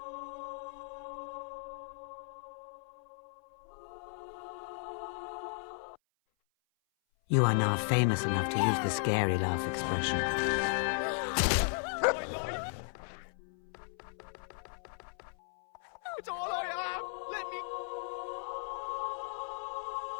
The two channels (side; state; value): right; silent; 54 dB below the other